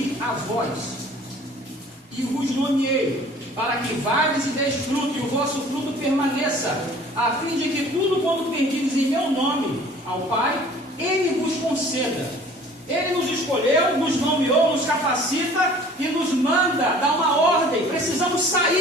a vós, e vos nomeei, para que vades e deis fruto, e o vosso fruto permaneça, a fim de que tudo quanto pedirdes em meu nome ao Pai, Ele vos conceda. Ele nos escolheu, nos nomeou, nos capacita e nos manda dar uma ordem. Precisamos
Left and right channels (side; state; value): both; normal; correlation 0.50